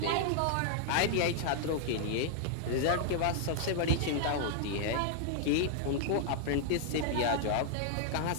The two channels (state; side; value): different; both; correlation -0.01